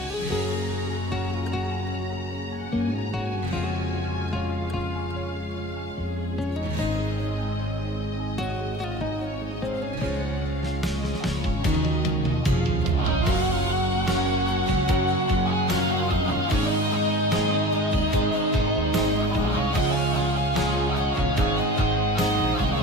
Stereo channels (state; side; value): normal; both; correlation 0.41